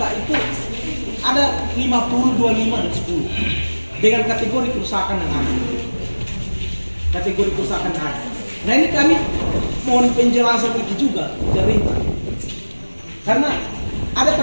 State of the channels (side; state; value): both; inverted; correlation -1.00